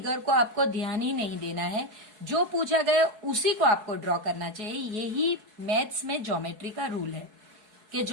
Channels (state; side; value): late; left; 4.7 ms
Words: को आपको ध्यान ही नहीं देना है, जो पूछा गया उसी को आपको ड्रॉ करना चाहिए। यही मैथ्स में ज्योमेट्री का रूल है कि